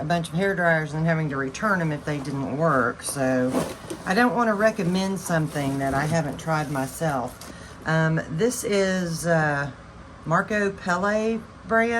bunch of hair dryers and having to return them if they didn't work. So I don't want to recommend something that I haven't tried myself. This is Marco Pelle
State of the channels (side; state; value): both; identical; correlation 1.00